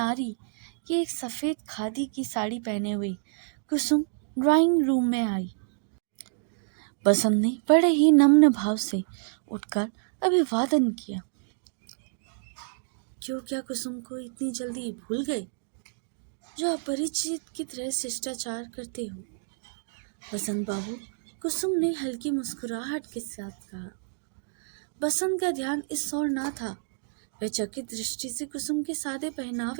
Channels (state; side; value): silent; left; digital silence